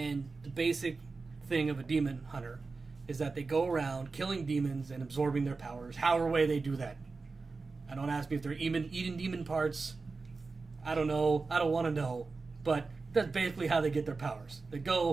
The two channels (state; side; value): quieter; left; 4.1 dB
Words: the basic thing of a demon hunter is that they go around killing demons and absorbing their powers, however way they do that. I don't ask me if they're eating demon parts. I don't know. I don't want to know. But that's basically how they get their powers. They